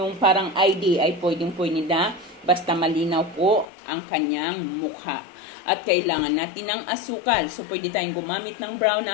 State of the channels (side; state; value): right; drops out; at 3.7 s